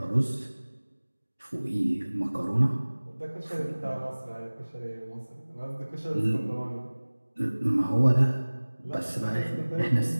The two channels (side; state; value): both; inverted; correlation -1.00